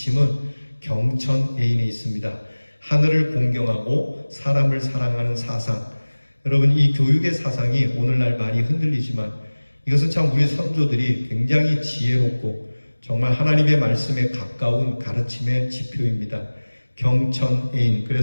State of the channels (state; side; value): inverted; both; correlation -1.00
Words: 경천애인에 있습니다. 하늘을 공경하고 사람을 사랑하는 사상. 여러분, 이 교육의 사상이 오늘날 많이 흔들리지만 이것은 참 우리 선조들이 굉장히 지혜롭고 정말 하나님의 말씀에 가까운 가르침의 지표입니다. 경천애인.